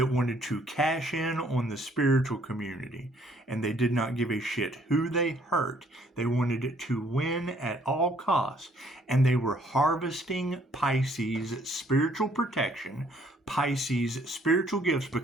wanted to cash in on the spiritual community, and they did not give a shit who they hurt. They wanted it to win at all costs, and they were harvesting Pisces spiritual protection, Pisces spiritual gifts,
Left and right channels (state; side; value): normal; both; correlation 0.63